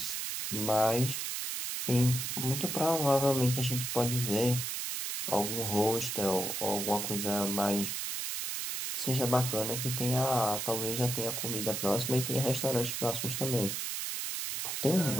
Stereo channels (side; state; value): right; noise; hiss, 3 dB below the sound